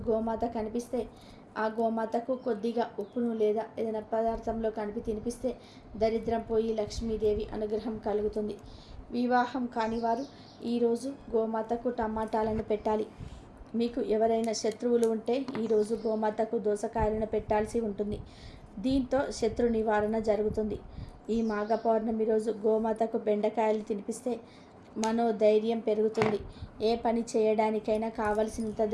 గోమాత కనిపిస్తే ఆ గోమాతకు కొద్దిగా ఉప్పును లేదా ఏదైనా పదార్థంలో కలిపి తినిపిస్తే దరిద్రం పోయి లక్ష్మీదేవి అనుగ్రహం కలుగుతుంది. వివాహం కాని వారు ఈరోజు గోమాతకు టమాటాలను పెట్టాలి. మీకు ఎవరైనా శత్రువులు ఉంటే ఈరోజు గోమాతకు దోసకాయలను పెట్టాల్సి ఉంటుంది. దీంతో శత్రు నివారణ జరుగుతుంది. ఈ మాఘ పౌర్ణమి రోజు గోమాతకు బెండకాయలు తినిపిస్తే మనోధైర్యం పెరుగుతుంది. ఏ పని చేయడానికైనా కావలసినంత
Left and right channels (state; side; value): identical; both; correlation 1.00